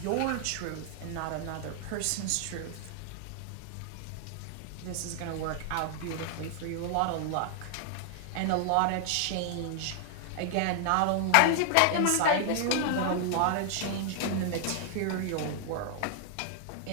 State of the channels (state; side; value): different; both; correlation 0.00